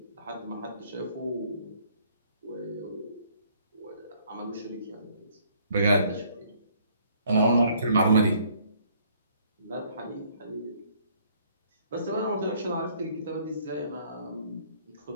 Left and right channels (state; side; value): inverted; both; correlation -0.62